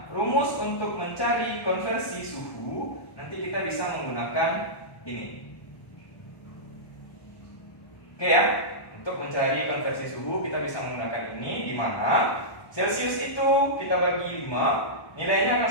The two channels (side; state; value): right; late; 1.1 ms